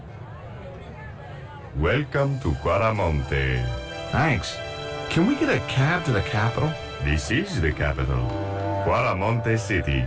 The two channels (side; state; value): both; identical; correlation 1.00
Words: Welcome to Quaramonte. Thanks. Can we get a cab to the capital? This is the capital, Quaramonte City.